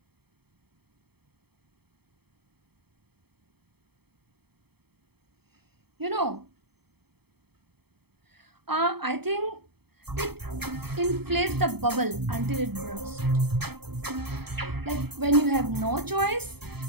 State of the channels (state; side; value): late; left; 0.97 ms